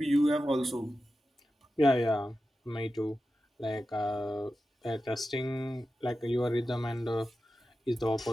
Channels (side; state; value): both; normal; correlation 0.92